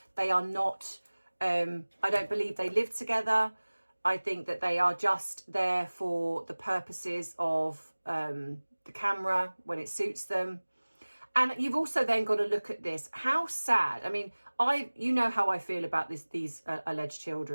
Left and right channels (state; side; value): inverted; both; correlation -1.00